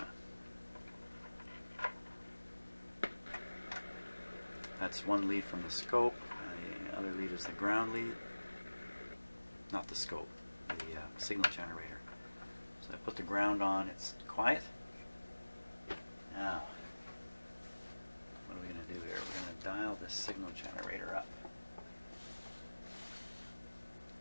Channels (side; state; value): both; inverted; correlation -1.00